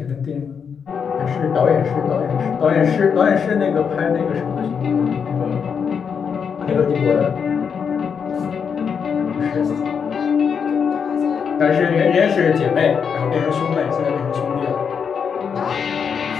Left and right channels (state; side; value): quieter; right; 6.7 dB